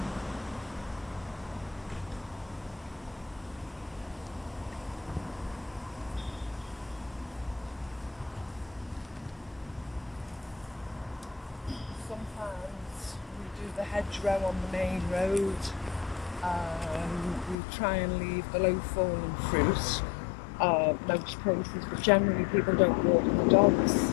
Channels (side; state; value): right; drops out; at 17.6 s